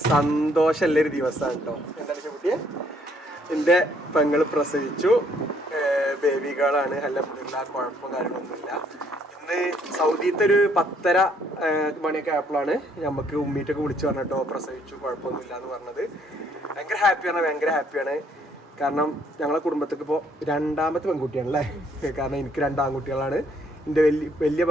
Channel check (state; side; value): normal; both; correlation 0.67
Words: സന്തോഷമുള്ളൊരു ദിവസമാണ് കേട്ടോ. എന്താണ് കുട്ടിയെ, എൻ്റെ പെങ്ങൾ പ്രസവിച്ചു, ബേബി ഗേളാണ്. അൽഹംദുലില്ലാ, കുഴപ്പം കാര്യങ്ങളൊന്നുമില്ല. ഇന്ന് സൗദിയിലത്തെ ഒരു 10:30 മണിയൊക്കെ ആയപ്പോഴാണ് നമുക്ക് ഉമ്മീറ്റൊക്കെ വിളിച്ച് പറഞ്ഞിട്ടോ പ്രസവിച്ചു, കുഴപ്പമൊന്നുമില്ല എന്ന് പറഞ്ഞത്. ഭയങ്കര ഹാപ്പിയാണ്. കാരണം ഞങ്ങളെ കുടുംബത്തേക്ക് ഇപ്പോൾ 2ാമത്തെ പെൺകുട്ടിയാണല്ലേ. കാരണം എനിക്ക് 2 ആൺകുട്ടികളാണ്, എൻ്റെ വലിയ